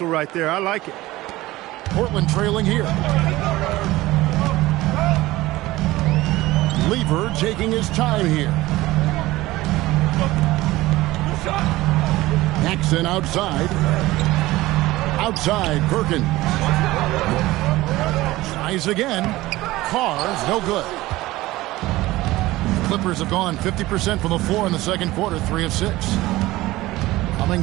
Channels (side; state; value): left; quieter; 18.1 dB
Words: right there. I like it. Portland trailing here. Lever taking his time here. Paxson outside. Outside, Perkins. Tries again. Carr's no good. Clippers have gone 50% from the floor in the second quarter, 3 of 6.